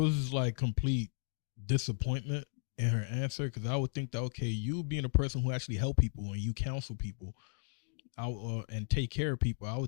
like complete disappointment in her answer, because I would think that, okay, you being a person who actually help people and you counsel people and take care of people, I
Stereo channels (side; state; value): right; silent; digital silence